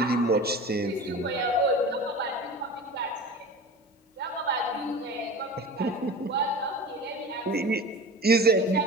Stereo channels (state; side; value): normal; both; correlation 0.34